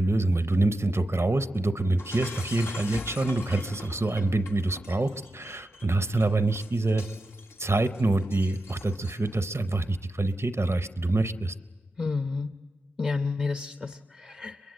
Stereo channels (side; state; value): both; normal; correlation 0.89